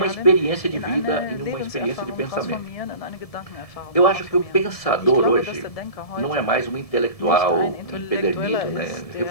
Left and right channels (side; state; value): right; late; 1.7 ms